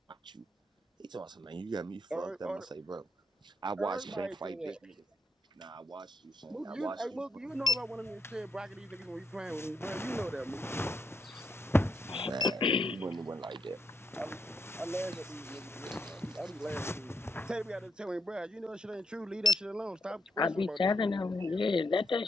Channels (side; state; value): both; normal; correlation 0.76